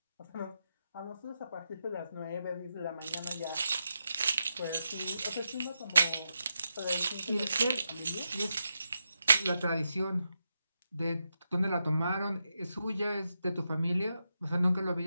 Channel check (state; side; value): inverted; both; correlation -0.87